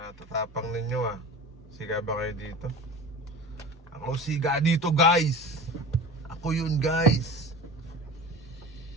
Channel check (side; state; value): both; normal; correlation 0.35